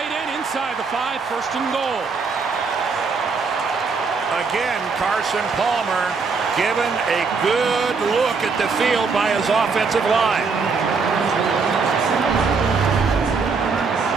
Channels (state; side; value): quieter; left; 4.8 dB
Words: end, inside the 5. First and goal. Again, Carson Palmer given a good look at the field by his offensive line.